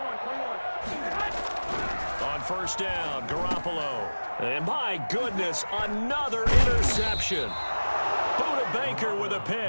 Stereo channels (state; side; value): inverted; both; correlation -1.00